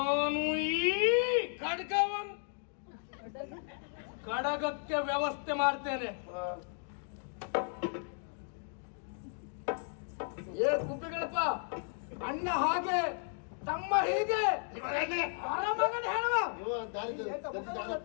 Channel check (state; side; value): silent; right; 55 dB below the other